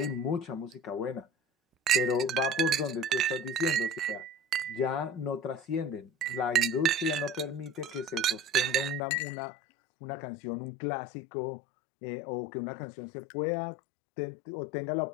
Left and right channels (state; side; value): drops out; right; at 9.0 s